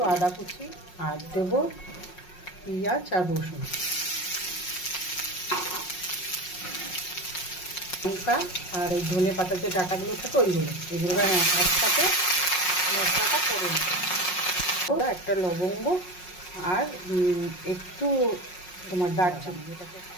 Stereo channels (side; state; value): right; late; 5.5 ms